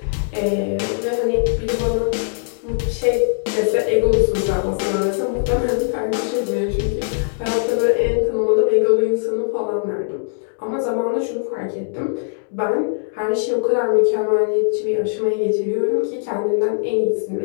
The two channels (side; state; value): right; silent; digital silence